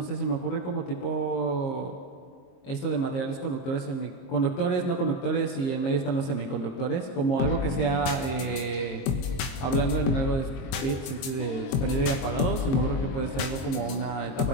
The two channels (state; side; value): late; right; 22 ms